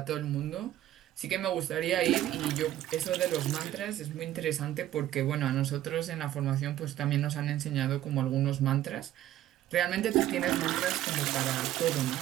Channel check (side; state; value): left; quieter; 13.0 dB